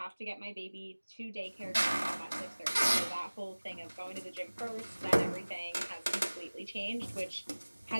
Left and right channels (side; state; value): both; inverted; correlation -1.00